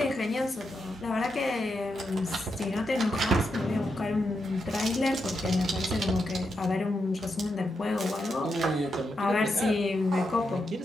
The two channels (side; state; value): both; normal; correlation 0.84